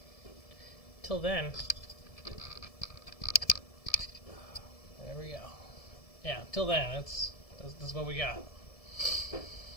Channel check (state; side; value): late; right; 1.7 ms